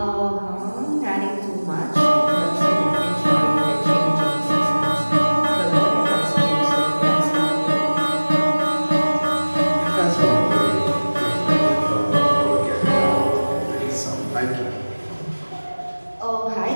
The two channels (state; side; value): inverted; both; correlation -1.00